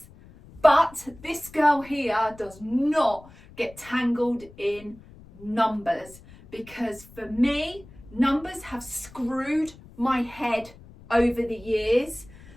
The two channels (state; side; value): noise; left; rumble, 21 dB below the sound